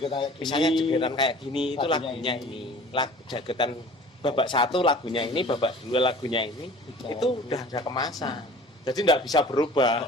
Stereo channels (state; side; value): normal; both; correlation 0.45